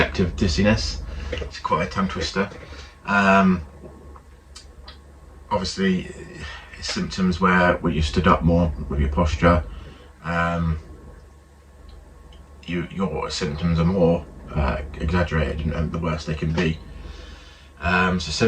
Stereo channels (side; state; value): both; identical; correlation 1.00